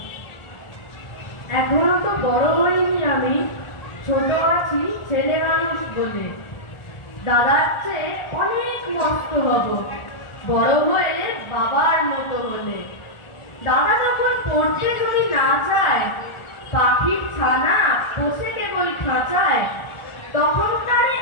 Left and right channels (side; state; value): right; late; 1.4 ms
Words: এখনো তো বড় হইনি আমি, ছোট আছি ছেলে মানুষ বলে। দাদার চেয়ে অনেক মস্ত হব বড় হয়ে বাবার মতো হলে। দাদা যখন পড়তে যদি না চায়, পাখির ছানা বসে কেবল খাঁচায়, তখন তারে